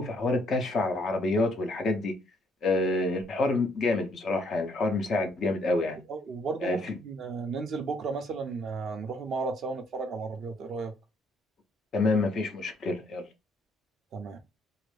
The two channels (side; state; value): both; normal; correlation 0.68